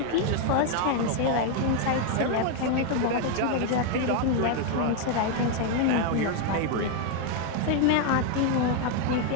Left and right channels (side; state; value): both; different; correlation 0.01